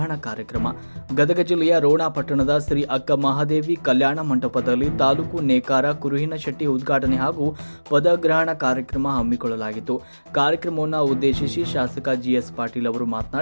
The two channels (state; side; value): inverted; both; correlation -1.00